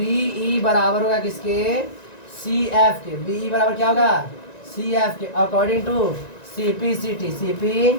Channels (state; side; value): late; right; 1.9 ms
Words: बराबर होगा किसके, CF के। BE बराबर क्या होगा, CF के अकॉर्डिंग टू CPCT